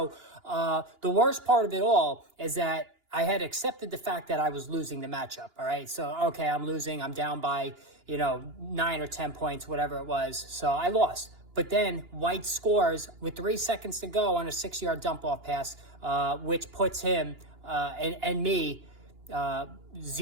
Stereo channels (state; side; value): late; left; 2.9 ms